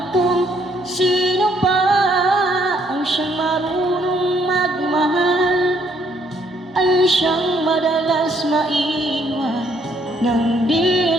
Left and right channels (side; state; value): both; normal; correlation 0.68